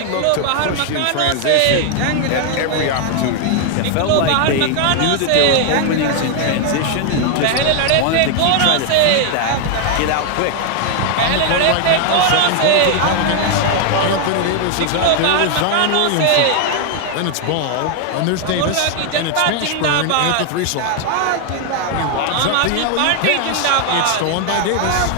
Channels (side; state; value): both; different; correlation 0.00